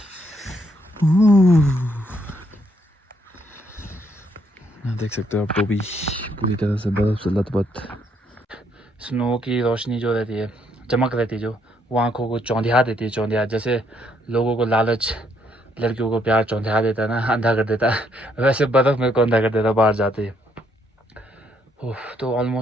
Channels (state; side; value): normal; both; correlation 0.71